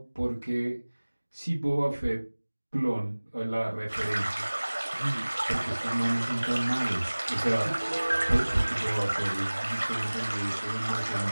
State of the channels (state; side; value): inverted; both; correlation -1.00